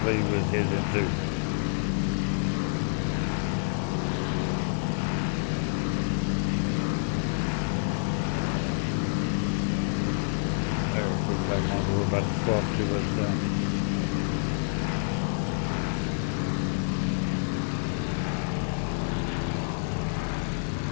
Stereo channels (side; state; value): right; silent; digital silence